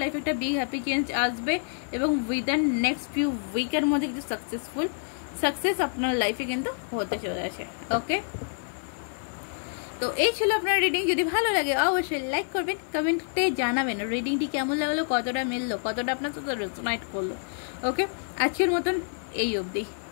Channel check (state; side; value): silent; right; 60 dB below the other